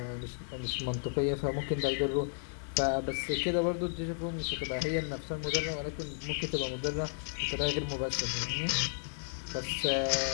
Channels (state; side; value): silent; right; digital silence